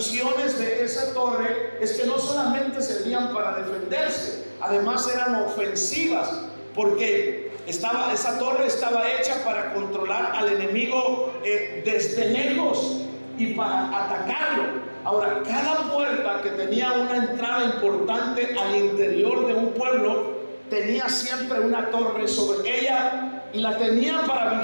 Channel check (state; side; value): inverted; both; correlation -1.00